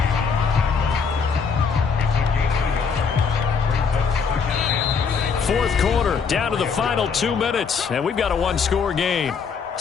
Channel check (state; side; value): quieter; right; 5.8 dB